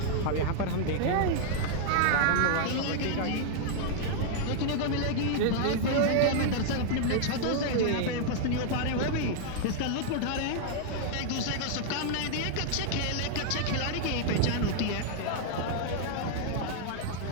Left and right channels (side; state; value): both; different; correlation 0.00